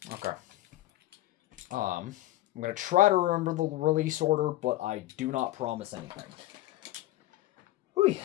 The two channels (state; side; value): quieter; right; 16.2 dB